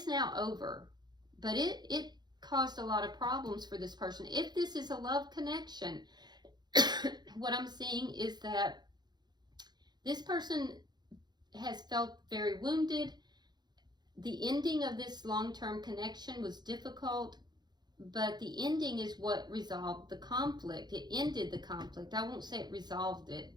now over, but it caused a lot of problems for this person. If this is a love connection, what I'm seeing is that this person has felt very wounded. The ending of this long-term connection was difficult, but the ending is what resolved the conflict. It ended the conflict. I won't say it resolved it.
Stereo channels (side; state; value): left; late; 0.21 ms